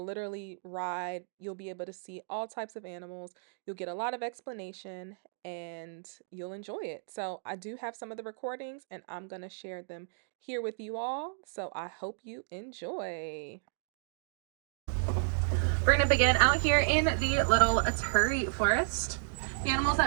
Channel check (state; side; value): silent; left; digital silence